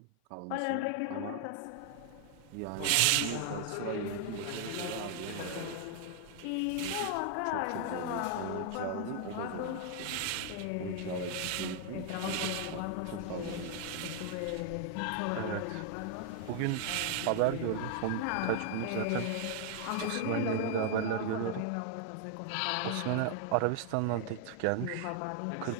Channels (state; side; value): different; both; correlation 0.00